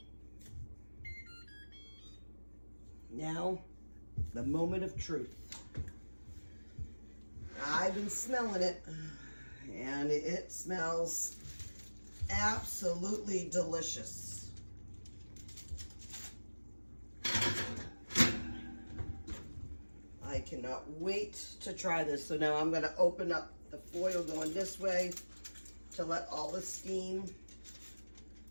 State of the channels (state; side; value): inverted; both; correlation -1.00